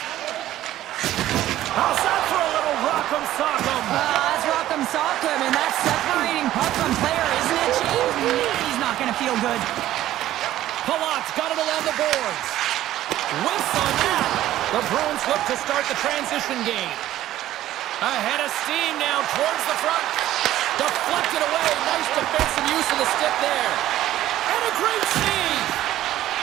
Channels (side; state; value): left; quieter; 13.7 dB